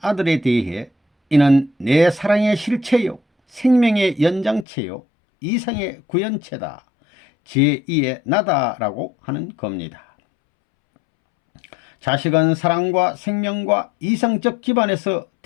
아들에 대해 이는 내 사랑의 실체요 생명의 연장체요 이상의 구현체다, 제2의 나다라고 하는 겁니다. 자식은 사랑과 생명과 이상적 기반에서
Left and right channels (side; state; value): right; drops out; at 4.7 s